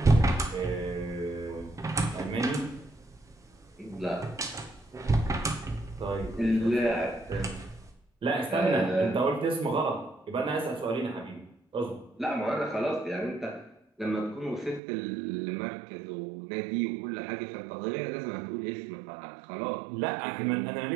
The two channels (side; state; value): left; drops out; at 14.8 s